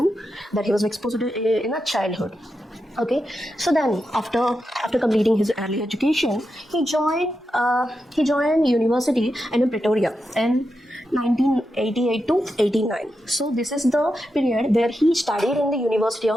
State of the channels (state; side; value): normal; both; correlation 0.88